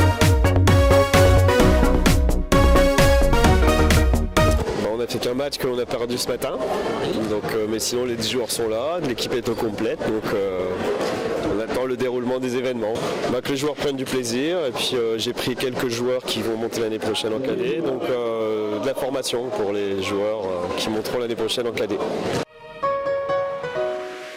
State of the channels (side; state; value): both; identical; correlation 1.00